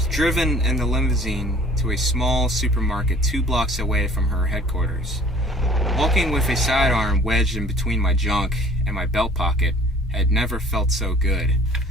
driven in the limousine to a small supermarket 2 blocks away from her headquarters. Walking with a sidearm wedged in between my junk and my belt pocket had never felt so good.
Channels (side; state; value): both; normal; correlation 0.51